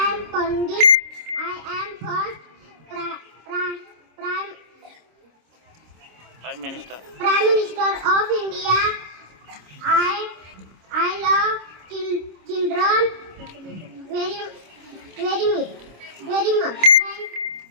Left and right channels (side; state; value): left; late; 26 ms